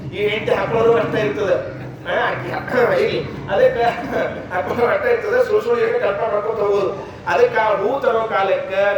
ಈ ಹೆಂಡತಿ ಹಾಕೊಳ್ಳೋರು ಅಷ್ಟ ಇರ್ತದೆ, ಅದಕ್ಕೆ ಹಾಕೊಳ್ಳೋ ಅಷ್ಟ ಇರ್ತದೆ, ಸುಳ್ಳು ಕಲ್ಪನೆ ಮಾಡ್ಕೊಂಡು ಹೋಗೋದು. ಅದಕ್ಕೆ ಆ ಹೂ ತರೋ ಕಾಲಕ್ಕೆ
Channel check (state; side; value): identical; both; correlation 1.00